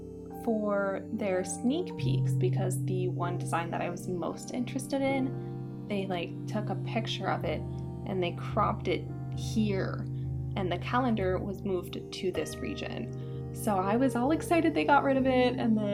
for their sneak peeks because the one design that I was most interested in, they took a picture of it and they cropped it here, and the calendar was moved to this region. So I was all excited they got rid of it, and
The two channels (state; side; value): identical; both; correlation 1.00